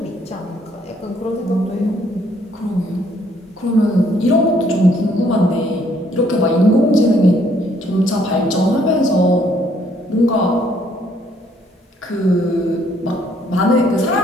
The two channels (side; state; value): both; normal; correlation 0.66